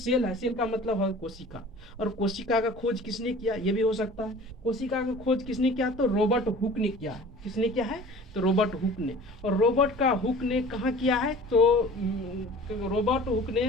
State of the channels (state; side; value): normal; both; correlation 0.44